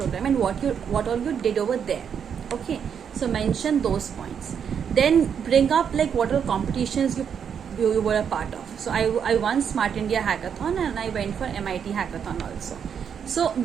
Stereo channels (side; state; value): left; quieter; 7.6 dB